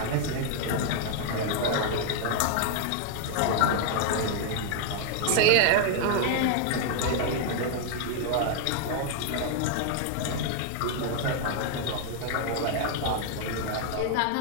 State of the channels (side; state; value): both; different; correlation 0.00